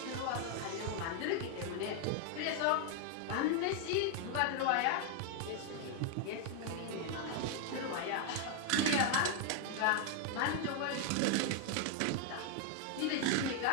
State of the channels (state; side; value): different; both; correlation 0.00